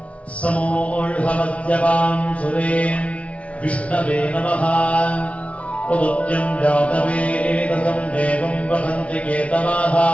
समोऽढमद्यपां सुरे विष्णवे नमः। उदुत्यं जातवेदसं देवं वदन्ति केतवाः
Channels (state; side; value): late; right; 0.064 ms